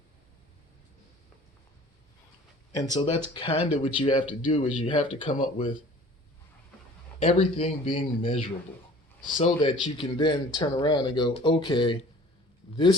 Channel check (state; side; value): normal; both; correlation 0.48